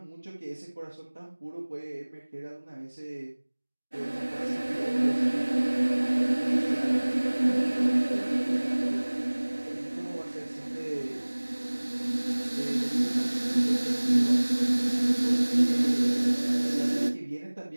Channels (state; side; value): inverted; both; correlation -1.00